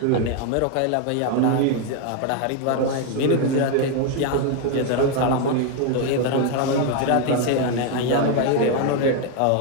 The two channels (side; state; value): both; different; correlation 0.01